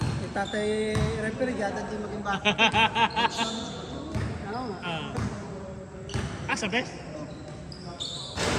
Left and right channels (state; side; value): identical; both; correlation 1.00